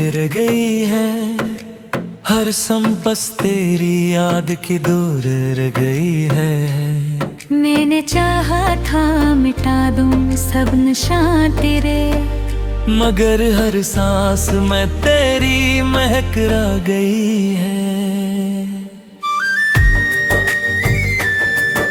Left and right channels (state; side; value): identical; both; correlation 1.00